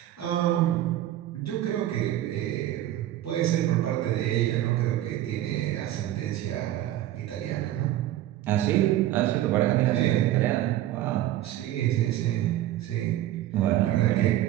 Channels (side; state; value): left; quieter; 13.5 dB